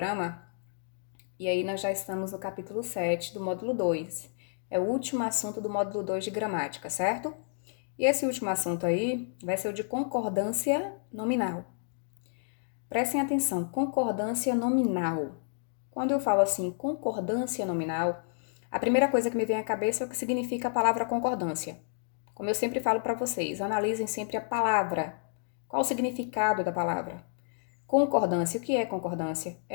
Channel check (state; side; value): silent; right; digital silence